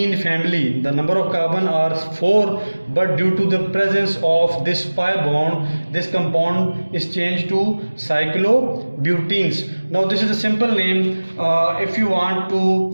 family. The number of carbon are 4, but due to the presence of this pi bond, this compound is changed to cyclobutenes. Now this is a simple name. If you want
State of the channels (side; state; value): both; inverted; correlation -1.00